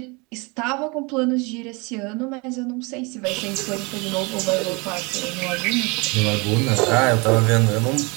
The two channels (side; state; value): left; quieter; 28.4 dB